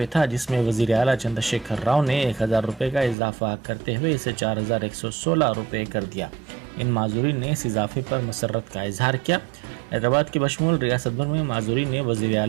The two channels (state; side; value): drops out; left; at 3.2 s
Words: था, जिसमें वज़ीर आला चंद्रशेखर राव ने 1000 रुपये का इजाफा करते हुए इसे 4116 रुपये कर दिया। इन माजूरीन ने इस इजाफे पर मसरत का इजहार किया। हैदराबाद के बशमूल रियासत भर में माजूरीन ने वज़ीर